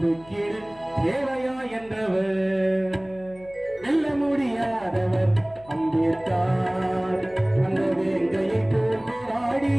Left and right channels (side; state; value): left; noise; hum, 24 dB below the sound